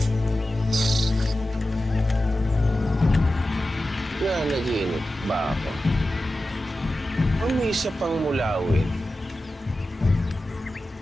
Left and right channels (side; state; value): both; normal; correlation 0.93